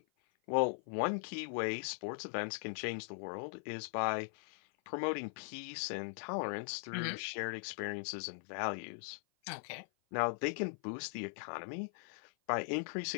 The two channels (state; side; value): silent; right; 51 dB below the other